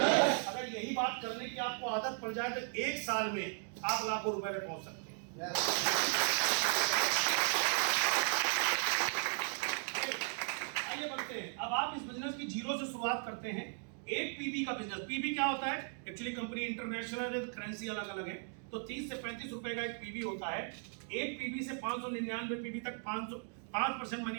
यही बात करने की आपको आदत पड़ जाए तो 1 साल में आप लाखों रुपए में पहुंच सकते हैं। आइए बढ़ते हैं। अब आप इस बिजनेस की जीरो से शुरुआत करते हैं। एक पीबी का बिजनेस, पीबी क्या होता है? एक्चुअली कंपनी इंटरनेशनल है, करेंसी अलग अलग है, तो 30 से 35 रुपए का एक पीबी होता है। एक पीबी से 599 पीबी तक 5%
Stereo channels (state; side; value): silent; left; 53 dB below the other